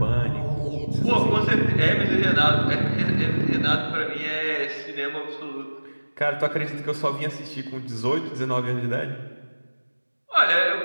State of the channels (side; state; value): both; inverted; correlation -1.00